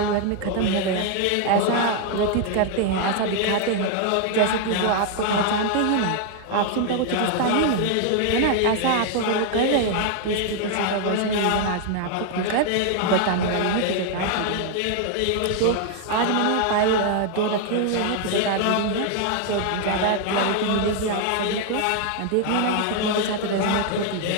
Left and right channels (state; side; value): different; both; correlation 0.00